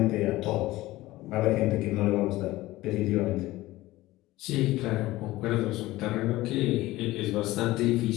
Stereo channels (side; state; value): right; quieter; 17.6 dB